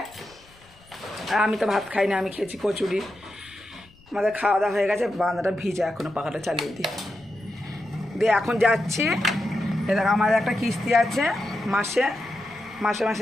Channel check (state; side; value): noise; left; rumble, 27 dB below the sound